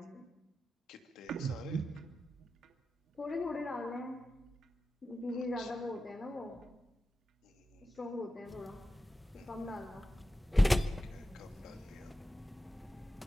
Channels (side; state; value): both; normal; correlation 0.92